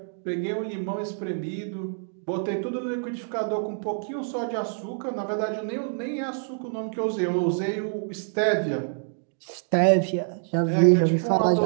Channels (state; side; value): silent; left; digital silence